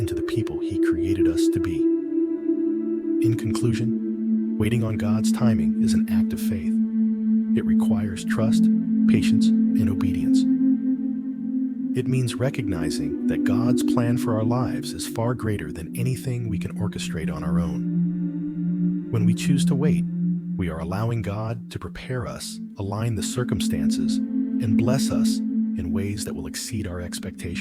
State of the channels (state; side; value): identical; both; correlation 1.00